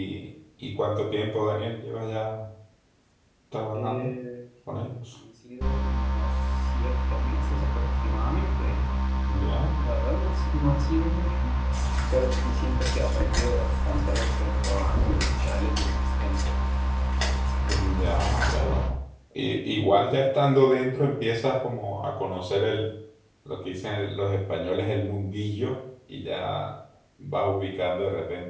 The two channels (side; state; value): both; identical; correlation 1.00